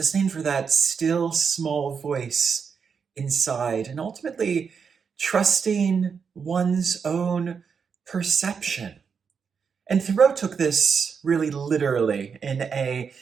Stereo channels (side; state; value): left; quieter; 6.2 dB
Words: for that still small voice inside and ultimately trusting one's own perception. And Thoreau took this really literally in a